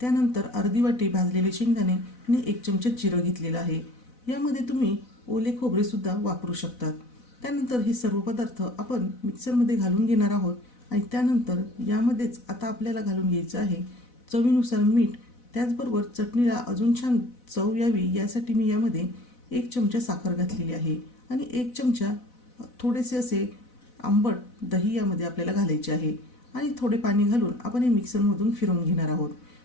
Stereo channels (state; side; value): late; right; 4.0 ms